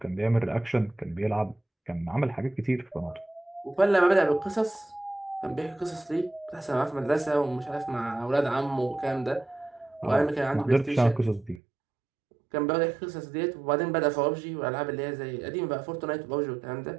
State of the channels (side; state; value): left; drops out; at 11.6 s